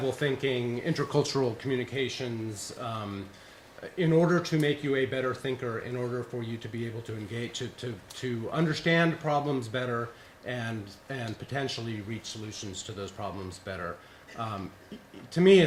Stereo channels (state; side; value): identical; both; correlation 1.00